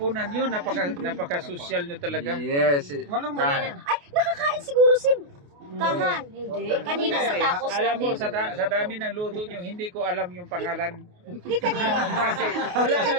yun, napaka-social nyo talaga. Yes. Walang Ka- Ay, nakakain siguro si Kahan. Hindi. Kanina sa tacos Alam mo, natin. sa dami ng luto nyo, hindi ko alam yung pangalan. Hindi kanina. Kasi wala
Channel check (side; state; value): left; late; 28 ms